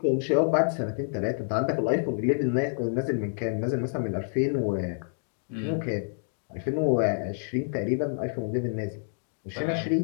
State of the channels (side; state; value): right; silent; digital silence